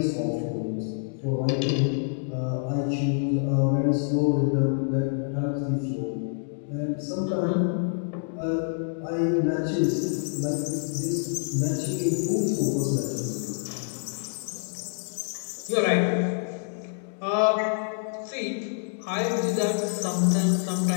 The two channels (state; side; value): silent; right; digital silence